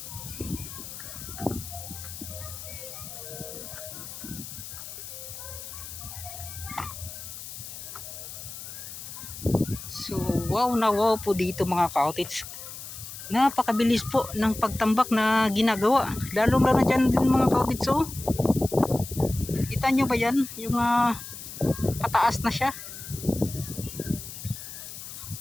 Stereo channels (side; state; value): left; noise; hiss, 11 dB below the sound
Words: So wow na wow po dito mga cottage. Napakabilis po ng pagtambak na ginagawa, lalo na dyan din mga cottage. So kita nyo ba yan, yung pataas na siya.